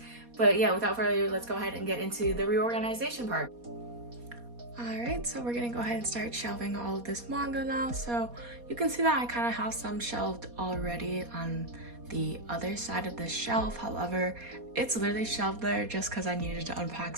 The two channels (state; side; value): late; left; 4.2 ms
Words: But yeah, without further ado, let's go ahead and get into the reorganization part. Alright, so we're gonna go ahead and start shelving all of this manga now. So you can see that I kind of have some shelved already on the other side of the shelf. However, it's literally shelved there just because I needed to unpack